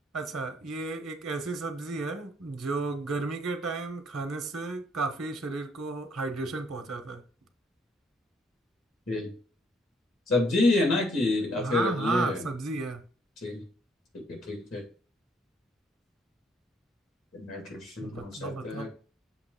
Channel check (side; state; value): both; normal; correlation 0.67